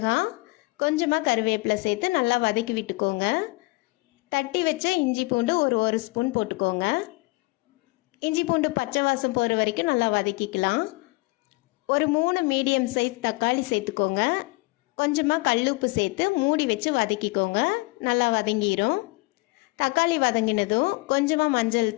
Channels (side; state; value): right; quieter; 24.9 dB